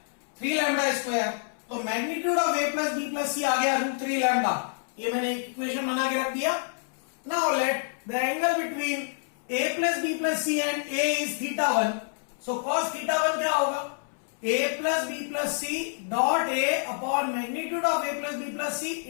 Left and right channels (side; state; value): right; silent; 60 dB below the other